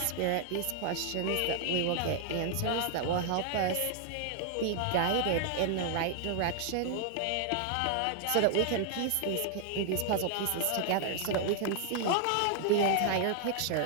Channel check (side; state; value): both; different; correlation 0.00